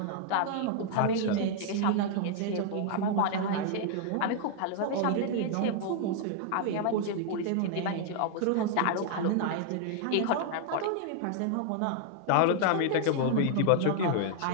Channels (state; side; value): different; both; correlation 0.00